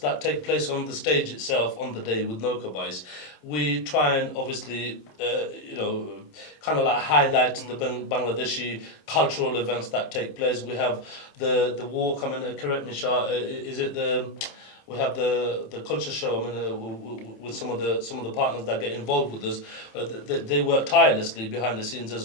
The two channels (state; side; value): late; right; 27 ms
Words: take place on the stage itself on the day with Nowka Bais, we try and obviously, kind of like highlight the Bangladeshi cultural events that take place. We have the walk, correct me, Shah, is it We have the culture show. I mean, with some of the partners that get involved with us, they work tirelessly behind the scenes